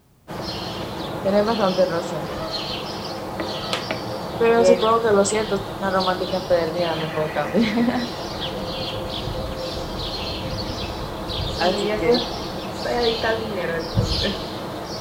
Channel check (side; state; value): both; identical; correlation 1.00